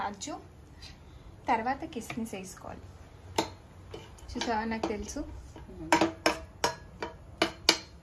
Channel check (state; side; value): identical; both; correlation 1.00